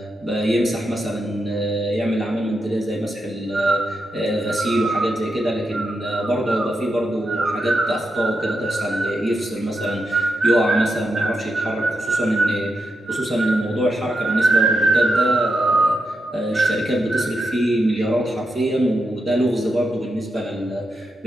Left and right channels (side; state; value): both; normal; correlation 0.86